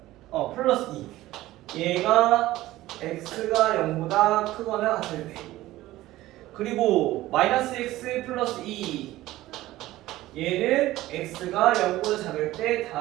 플러스 2. 얘가 x가 0보다 크거나 같을 때. 그리고 마이너스 x 플러스 2. 얘는 x가 0보다 작을 때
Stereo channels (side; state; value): left; quieter; 16.4 dB